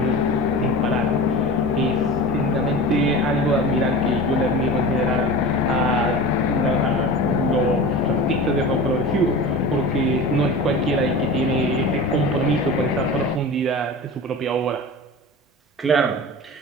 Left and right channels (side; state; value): both; normal; correlation 0.33